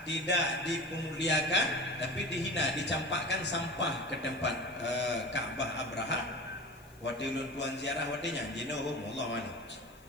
Tidak dipemuliakan tapi dihina, dicampakkan sampah ke tempat Ka'bah Abraha. Wadilun tuan ziarah wadinya jinohum Allah wali.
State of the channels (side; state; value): left; noise; hiss, 27 dB below the sound